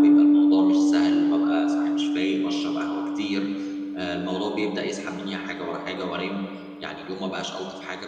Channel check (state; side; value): identical; both; correlation 1.00